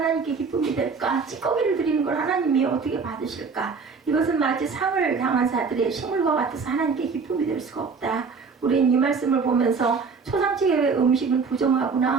기쁨이 될까? 찌꺼기를 드리는 걸 하나님이 어떻게 받으실까? 이것은 마치 상을 당한 자들의 식물과 같아서 하나님께 기쁨이 될 수가 없다. 우리는 이 말씀을 보면서 초상집의 음식은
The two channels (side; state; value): left; quieter; 5.1 dB